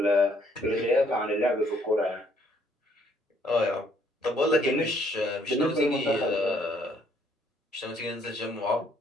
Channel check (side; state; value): both; normal; correlation 0.66